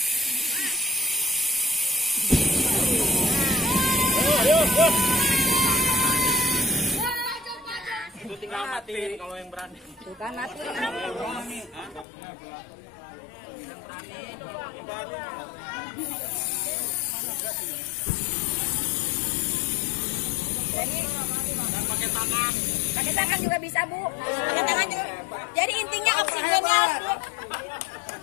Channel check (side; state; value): right; drops out; at 12.1 s